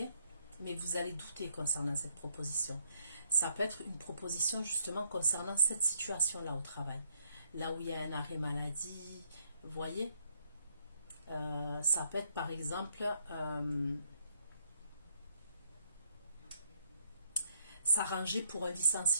Mais vous allez douter concernant cette proposition. Ça peut être une proposition justement concernant cette situation-là au travail. Là où il y a un arrêt maladie, vous voyez? Ça peut être par exemple s'arranger pour un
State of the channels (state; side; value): inverted; both; correlation -0.73